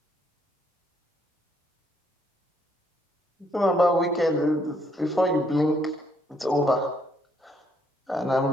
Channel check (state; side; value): normal; both; correlation 0.70